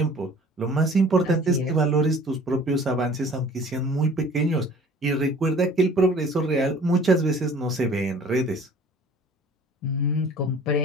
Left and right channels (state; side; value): normal; both; correlation 0.49